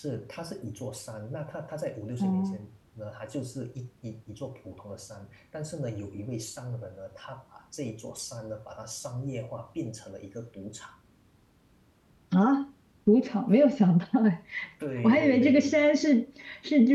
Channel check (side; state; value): both; identical; correlation 1.00